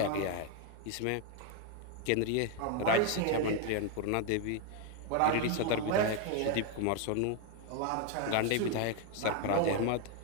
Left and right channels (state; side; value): different; both; correlation 0.01